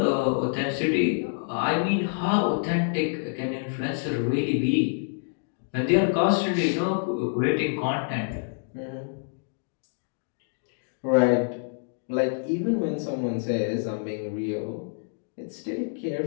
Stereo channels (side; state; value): right; silent; digital silence